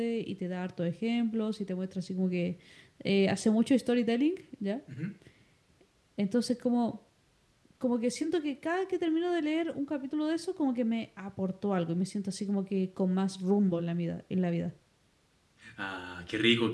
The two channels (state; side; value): identical; both; correlation 1.00